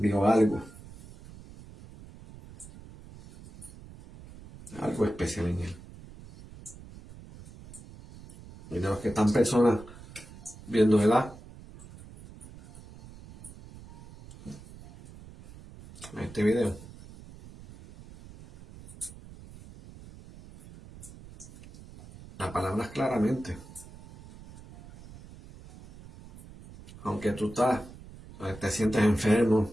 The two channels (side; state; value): right; noise; rumble, 18 dB below the sound